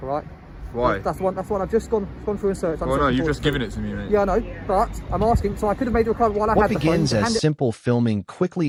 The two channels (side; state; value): both; identical; correlation 1.00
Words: all right? Why? That's the one I've just gone through and searched. Well, no, you've just given it to me, mate. Yeah, I know, but I'm asking, so I could have made a requirement while I had the phone. What begins as simple filming